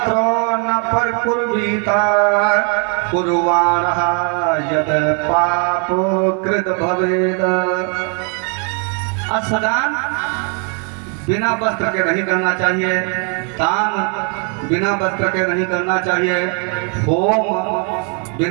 न परकुर्वीता कुर्वाणः यद पाप कृत भवेद। स्नान बिना वस्त्र के नहीं करना चाहिए, दान बिना वस्त्र के नहीं करना चाहिए, होम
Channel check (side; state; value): left; quieter; 39.2 dB